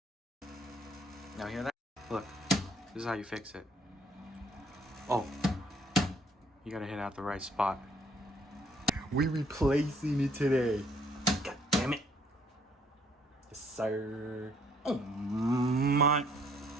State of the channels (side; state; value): both; normal; correlation 0.64